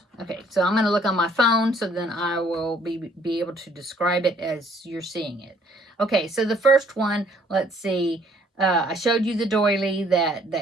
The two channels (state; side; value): normal; both; correlation 0.62